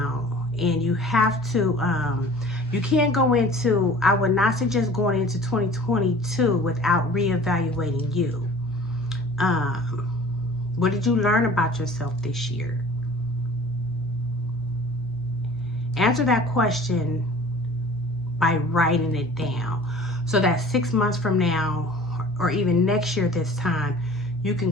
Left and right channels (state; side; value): normal; both; correlation 0.46